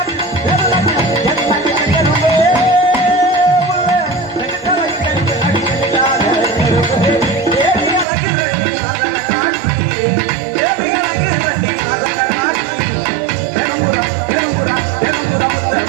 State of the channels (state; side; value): drops out; left; at 8.1 s